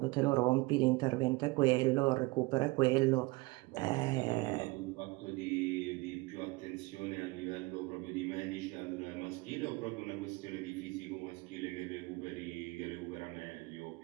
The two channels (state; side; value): quieter; left; 23.4 dB